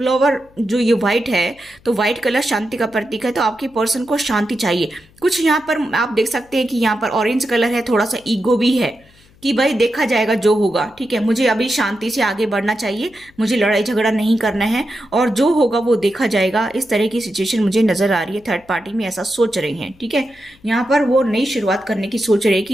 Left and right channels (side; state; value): left; noise; hum, 29 dB below the sound